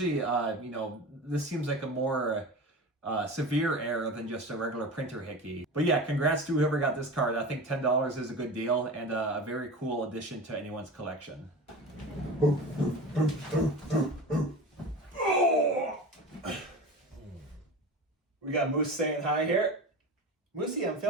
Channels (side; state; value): both; normal; correlation 0.31